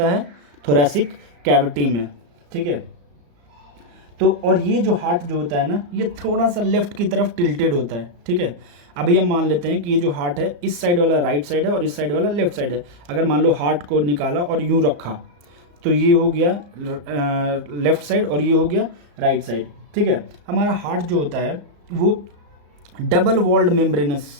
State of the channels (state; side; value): late; left; 34 ms